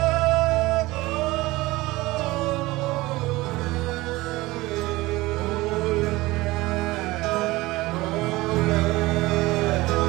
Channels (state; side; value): quieter; left; 19.9 dB